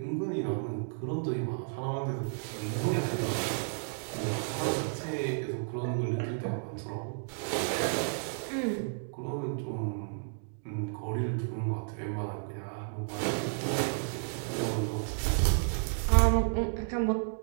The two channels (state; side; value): silent; left; digital silence